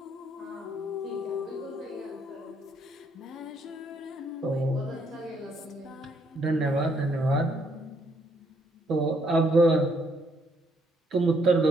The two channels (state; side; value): normal; both; correlation 0.71